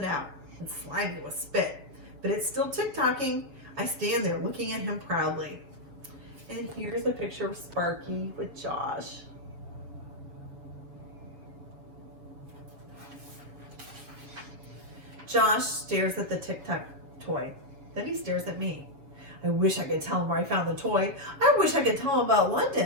out. It's slimy with spit, but it's still tick-tocking. I stand there looking at him proudly. And here's a picture of Sparky with Josh. Josh stares at the Tic Tac toy. Then he stares at me. I wish I could tell him where I found the toy. I wish I could tell him about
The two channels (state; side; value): late; left; 7.1 ms